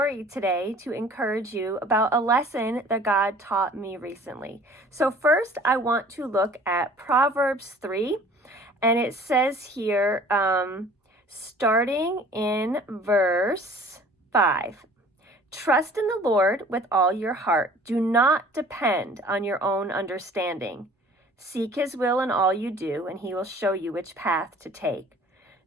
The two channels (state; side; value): normal; both; correlation 0.50